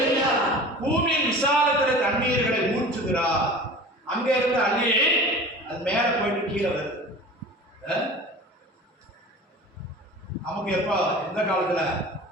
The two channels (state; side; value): normal; both; correlation 0.39